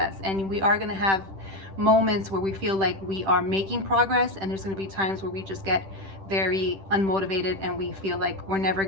and we are going to have moments where we feel like we are making progress, and there's going to be times where we just get very unmotivated and we feel like we're never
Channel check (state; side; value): late; left; 10 ms